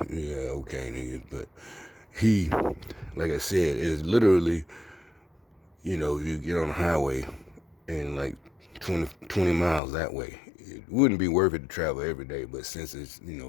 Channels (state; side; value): drops out; right; at 9.8 s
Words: yeah, okay, nigga. But he, like I said, is literally, you get on the highway and like 20 miles that way. It wouldn't be worth it to travel every day, but since it's,